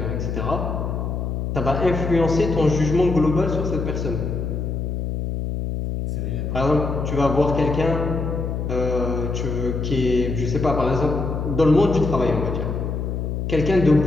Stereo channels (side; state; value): left; noise; hum, 3 dB below the sound